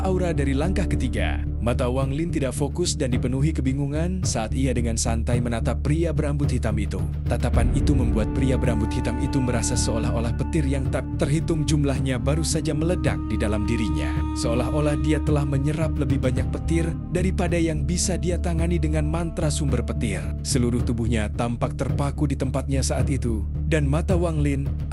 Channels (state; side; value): identical; both; correlation 1.00